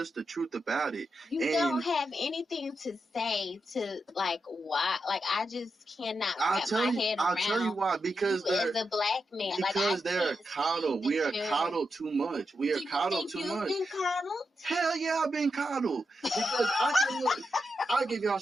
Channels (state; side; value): normal; both; correlation 0.86